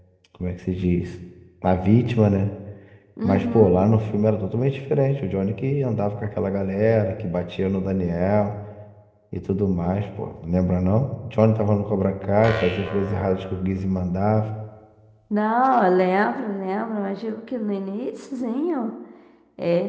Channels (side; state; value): both; identical; correlation 1.00